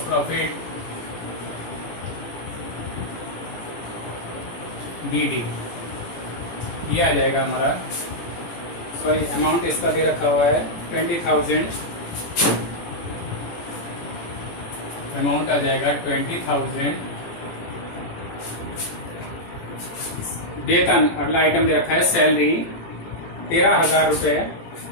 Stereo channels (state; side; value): late; right; 18 ms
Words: प्रॉफिट BD, ये आ जाएगा हमारा। सॉरी, अमाउंट इसका दे रखा हुआ है 20,000, अमाउंट आ जाएगा 20,000। वेतन, अगला आइटम दे रखा है सैलरी 13,000 रुपए।